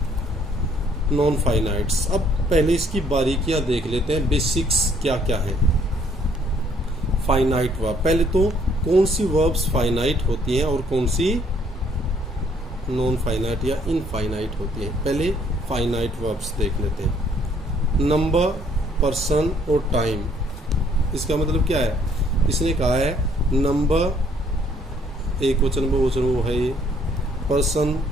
नॉन फाइनाइट्स। अब पहले इसकी बारीकियां देख लेते हैं, बेसिक्स क्या क्या है। फाइनाइट वर्ब, पहले तो कौन सी वर्ब्स फाइनाइट होती हैं और कौन सी नॉन फाइनाइट या इनफाइनाइट होती हैं। पहले फाइनाइट वर्ब्स देख लेते हैं। नंबर, पर्सन और टाइम। इसका मतलब क्या है, इसने कहा है नंबर एक वचन बहुवचन वो है, ये पर्सन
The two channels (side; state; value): both; normal; correlation 0.64